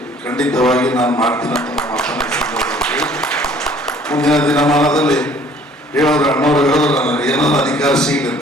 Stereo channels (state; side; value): normal; both; correlation 0.55